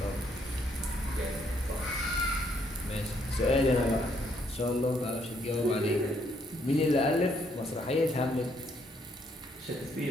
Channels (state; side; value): normal; both; correlation 0.70